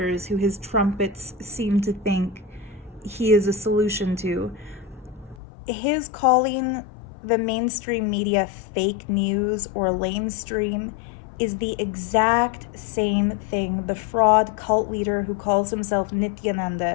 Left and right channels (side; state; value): right; drops out; at 5.4 s